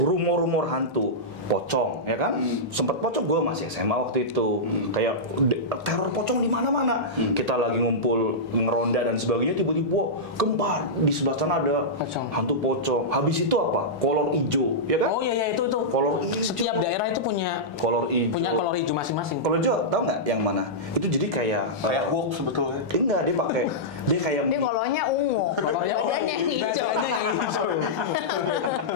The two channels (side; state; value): both; normal; correlation -0.12